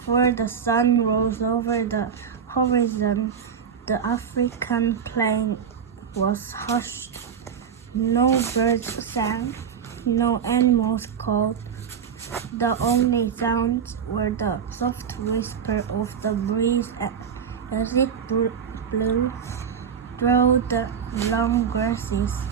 the sun rose over the horizon, the African plain was hushed. No birds sang, no animals called. The only sounds were the soft whisper of the breeze as it blew through the long grasses,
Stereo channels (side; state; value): left; quieter; 7.3 dB